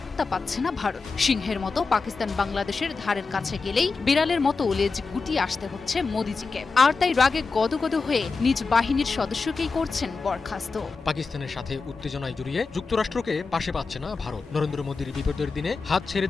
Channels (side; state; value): right; quieter; 4.4 dB